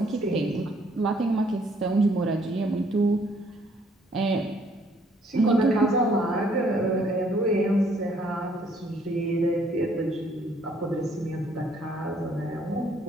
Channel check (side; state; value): both; normal; correlation 0.65